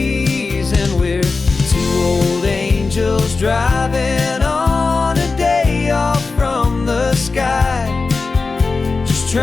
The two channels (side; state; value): right; quieter; 4.1 dB